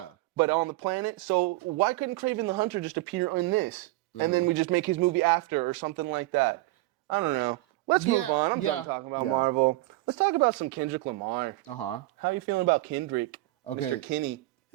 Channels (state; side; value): quieter; left; 19.3 dB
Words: But on the planet. So why couldn't Kraven the Hunter just appear in this? And then we just make his movie after or something like that. I don't know. Let's move on. I'm done talking about Marvel. Let's talk about some Kendrick Lamar. How are you feeling about Kendrick? Okay. Mr. Kenny.